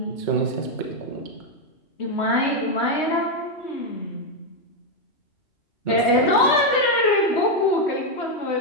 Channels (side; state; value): right; late; 3.2 ms